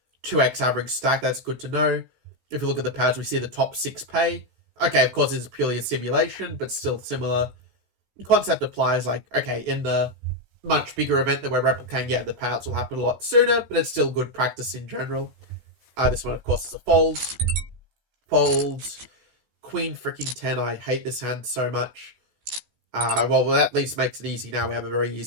2x average stack. That's good to know. If we look at the pads, we see the top 6 pay. Okay, of course, it's purely a simulation, but still similar. The concept applies, like, okay, in the much bigger event that we're replicating, yeah, the payouts will happen a lot sooner, but it's still good practice in general. This one, of course, is a fold. Fold. Queen freaking 10. I hate this hand so much. Well, that at least makes it easy now. We have a very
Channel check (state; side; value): late; left; 16 ms